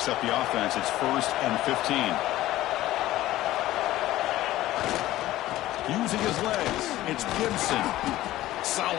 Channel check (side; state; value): right; quieter; 15.5 dB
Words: up the offense. It's 1st and 15. Using his legs, it's Gibson.